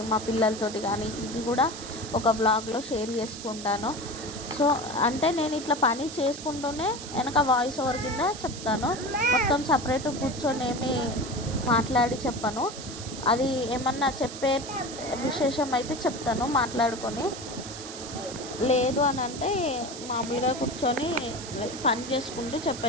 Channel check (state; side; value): noise; right; hiss, 11 dB below the sound